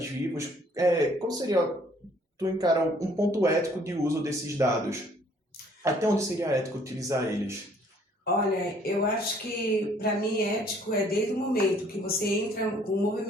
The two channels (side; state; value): both; normal; correlation 0.60